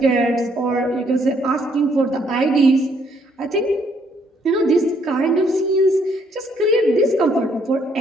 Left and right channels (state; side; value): normal; both; correlation 0.68